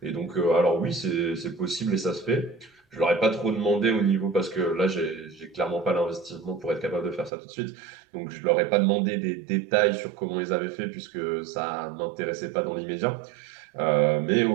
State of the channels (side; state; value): left; drops out; at 7.3 s